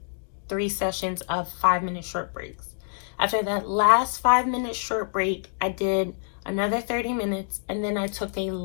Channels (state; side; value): silent; right; digital silence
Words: 3 sessions of 5-minute short breaks. After that last 5-minute short break, I did another 30 minutes, and then I took a